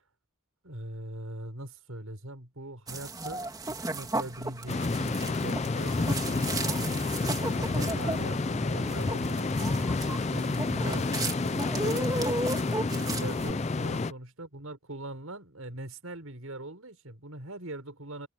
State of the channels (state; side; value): normal; both; correlation 0.63